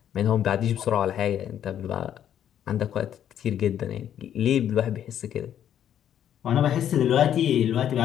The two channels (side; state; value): right; quieter; 10.2 dB